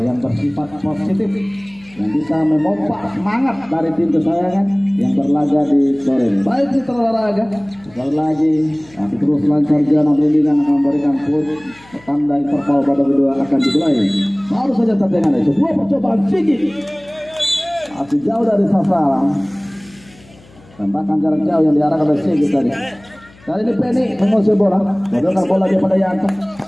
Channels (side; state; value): left; noise; hum, 26 dB below the sound